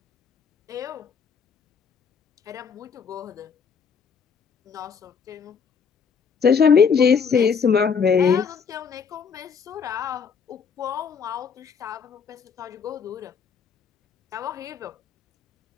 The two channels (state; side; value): quieter; right; 6.3 dB